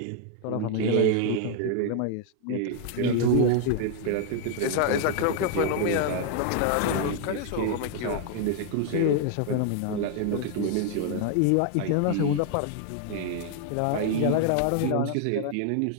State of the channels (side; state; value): both; different; correlation 0.00